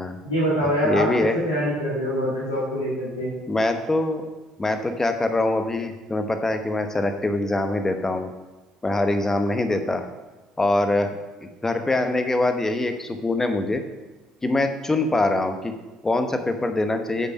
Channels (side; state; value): both; normal; correlation 0.76